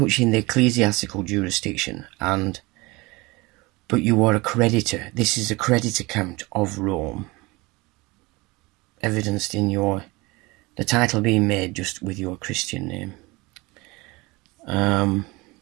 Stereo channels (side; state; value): left; quieter; 23.5 dB